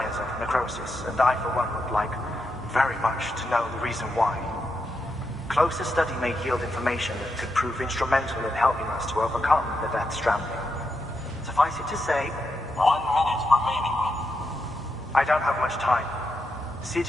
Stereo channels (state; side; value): normal; both; correlation 0.84